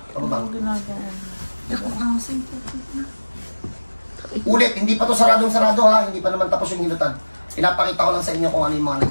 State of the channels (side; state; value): both; inverted; correlation -1.00